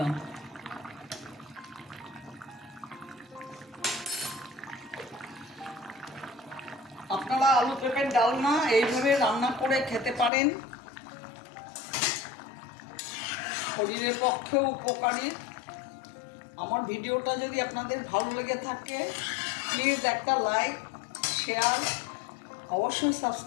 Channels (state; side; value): drops out; right; at 10.3 s